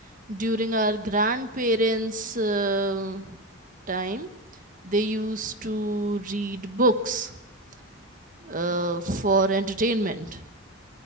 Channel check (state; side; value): normal; both; correlation 0.16